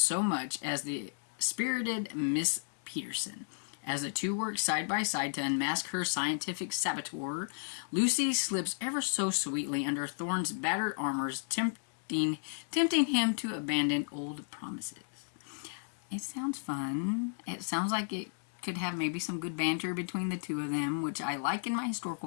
much as the spirited Miss Peterson. As the two work side by side to unmask her scientific saboteur, Lucy slips ever so sweetly under Thorne's battered armors, tempting him to abandon old promises. It sounds fun. It sounds like it could have maybe some good banter between the two of them, which I like in my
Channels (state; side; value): silent; right; digital silence